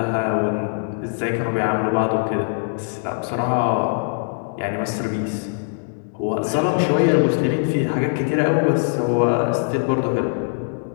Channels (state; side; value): silent; right; digital silence